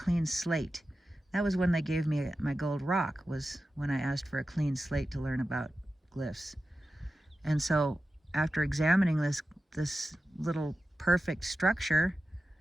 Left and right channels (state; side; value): normal; both; correlation 0.93